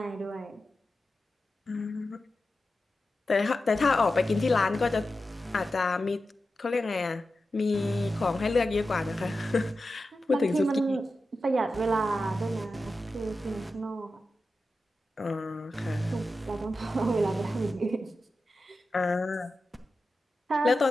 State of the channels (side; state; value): both; normal; correlation 0.92